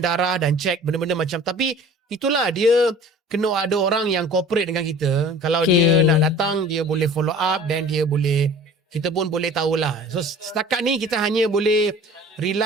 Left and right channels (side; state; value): both; normal; correlation 0.45